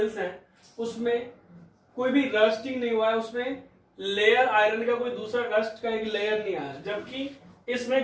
हैं उसमें कोई भी रस्टिंग नहीं हुआ है, उसमें लेयर आयरन का कोई दूसरा रस्ट का एक लेयर नहीं आया, जबकि इसमें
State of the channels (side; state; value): both; identical; correlation 1.00